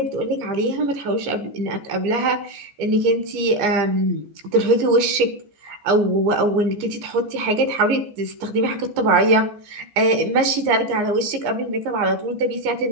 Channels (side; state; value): left; late; 14 ms